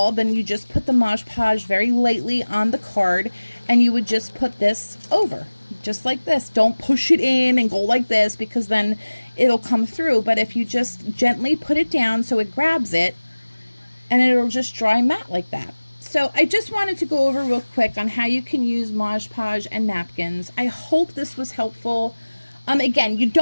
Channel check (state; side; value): inverted; both; correlation -1.00